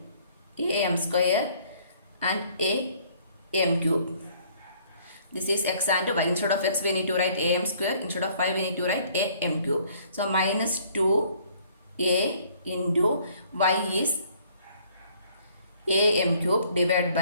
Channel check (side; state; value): both; inverted; correlation -0.60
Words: am square and am cube. This is x and y. Instead of x we need to write am square. Instead of y we need to write am cube. So minus 2a into y is am cube divided